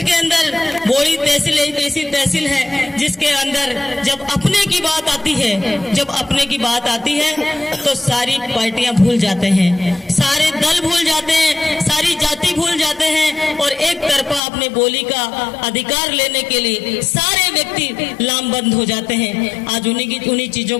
के अंदर, बोड़ी तहसील एक ऐसी तहसील है जिसके अंदर जब अपने की बात आती है, जब अपने की बात आती है तो सारी पार्टियां भूल जाते हैं, सारे दल भूल जाते हैं, सारी जाति भूल जाते हैं और एक तरफा अपने बोली का अधिकार लेने के लिए सारे व्यक्ति लामबंद हो जाते हैं। आज उन्हीं चीजों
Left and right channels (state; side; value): drops out; right; at 14.4 s